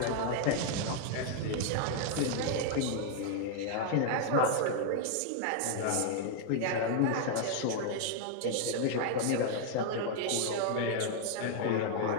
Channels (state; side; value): different; both; correlation 0.00